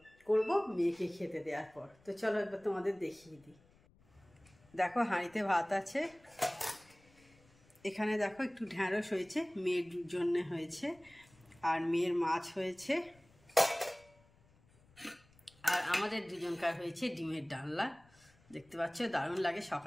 করব মেয়েকে খেতে দেওয়ার পর। তো চলো একবার তোমাদের দেখিয়ে দিই। দেখো হাঁড়িতে ভাত আছে, এখানে দেখো একটু ঢ্যাঁড়স হয়েছে, মেয়ের জন্যে হয়েছে, আর মেয়ের মাছ হয়েছে, আর আমাদের দুজনকার হয়েছে ডিমের ডালনা। দেখতে পাচ্ছ দারুণ লাগে,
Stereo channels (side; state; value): left; noise; rumble, 29 dB below the sound